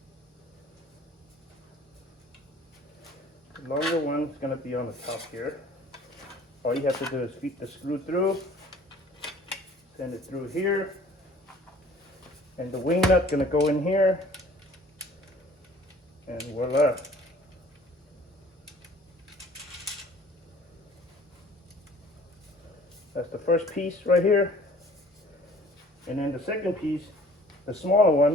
The longer one is going to be on the top here. All you have to do is feed the screw through, send it through here, and the wing nut going to go in here, And voila. That's the first piece right here. And then the second piece, the smaller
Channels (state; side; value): normal; both; correlation 0.51